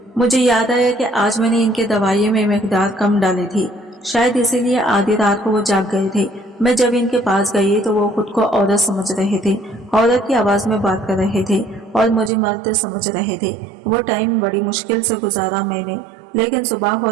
मुझे याद आया कि आज मैंने इनके दवाइयों में मिकदार कम डाली थी, शायद इसीलिए आधी रात को वो जाग गए थे। मैं जब इनके पास गई तो वो खुद को औरत समझ रहे थे, औरत की आवाज़ में बात कर रहे थे और मुझे मर्द समझ रहे थे। वो टाइम बड़ी मुश्किल से गुजारा मैंने, लेकिन सुबह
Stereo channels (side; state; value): left; drops out; at 12.3 s